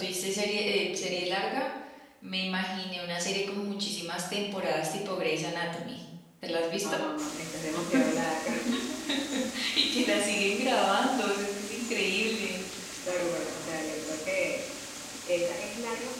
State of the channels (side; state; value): both; identical; correlation 1.00